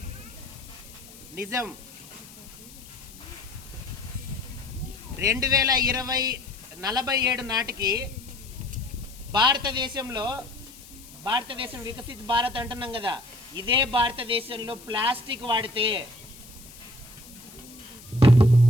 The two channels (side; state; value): left; noise; hiss, 19 dB below the sound